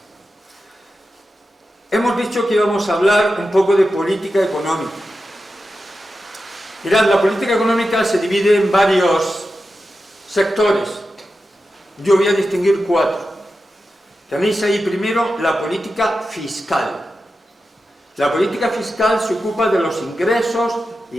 Hemos dicho que íbamos a hablar un poco de política económica. Mirad, la política económica se divide en varios sectores. Yo voy a distinguir 4. Tenéis ahí primero la política fiscal. La política fiscal se ocupa de los ingresos y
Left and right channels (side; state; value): both; normal; correlation 0.91